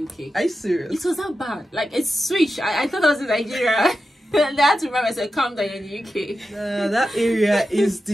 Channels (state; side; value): normal; both; correlation 0.91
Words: UK. Are you serious? It was that bad. It's switched. I thought I was in Nigeria. And I had to remember, I said, calm down, in the UK. That area is